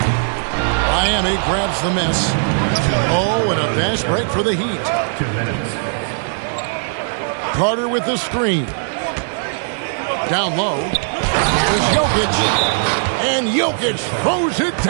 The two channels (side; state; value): left; silent; digital silence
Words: Miami grabs the miss. Oh, and a fast break for the Heat. 2 minutes. Carter with the screen. Down low. There's Jokic. And Jokic throws it